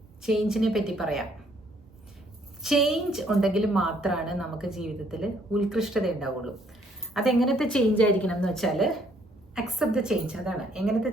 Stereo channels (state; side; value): normal; both; correlation 0.66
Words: ചേഞ്ചിനെ പറ്റി പറയാം. ചേഞ്ച് ഉണ്ടെങ്കിൽ മാത്രമാണ് നമുക്ക് ജീവിതത്തിൽ ഉത്കൃഷ്ടത ഉണ്ടാവുള്ളൂ. അതെങ്ങനത്തെ ചേഞ്ച് ആയിരിക്കണം എന്ന് വെച്ചാൽ അക്സെപ്റ്റ് ദ ചേഞ്ച്. അതാണ് എങ്ങനത്തെ